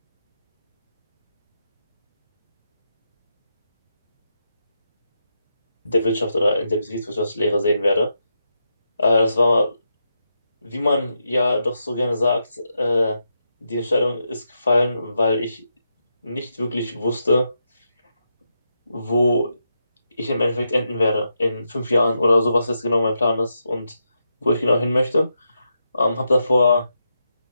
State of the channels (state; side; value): inverted; both; correlation -0.84